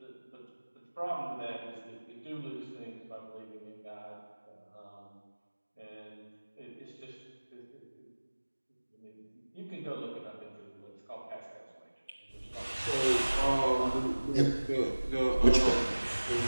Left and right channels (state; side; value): inverted; both; correlation -1.00